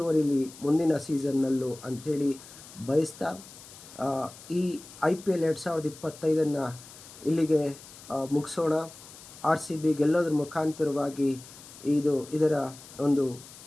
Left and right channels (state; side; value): noise; left; hiss, 18 dB below the sound